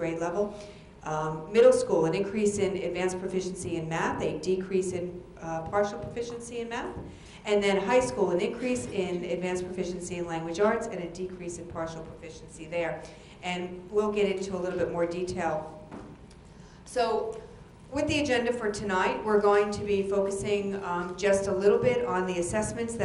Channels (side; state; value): both; identical; correlation 1.00